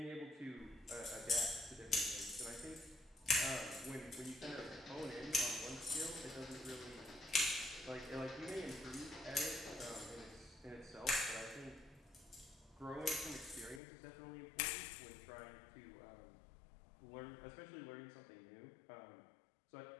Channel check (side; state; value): right; drops out; at 13.8 s